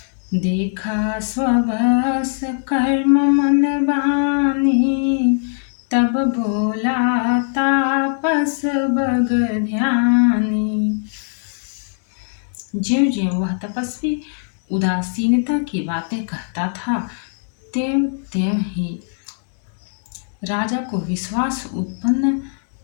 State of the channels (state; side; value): silent; right; digital silence